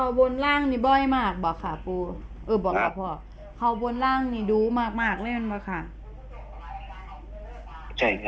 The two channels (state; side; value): identical; both; correlation 1.00